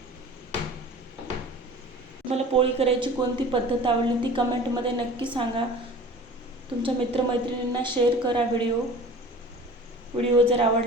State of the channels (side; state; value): both; normal; correlation 0.42